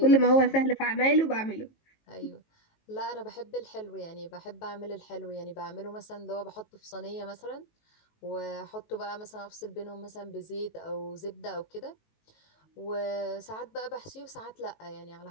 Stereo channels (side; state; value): right; late; 18 ms